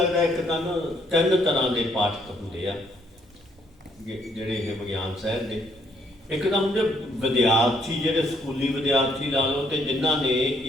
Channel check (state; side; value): normal; both; correlation 0.70